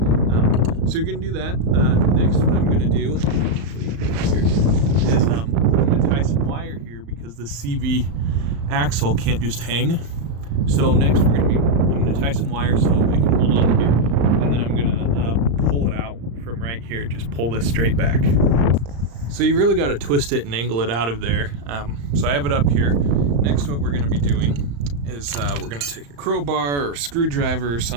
So you're going to do that. Next, what I'm going to do is I'm going to tie some wire here, because the CV axle can't just hang. So next I'm going to tie some wire so it can hold on here, and then I'm going to pull it out from right here. Just pull this straight back. So you really got to twist it and angle it out of there. So I have it up here. Next, what we're going to be doing is we're going to take a crowbar or screwdriver or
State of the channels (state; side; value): late; left; 35 ms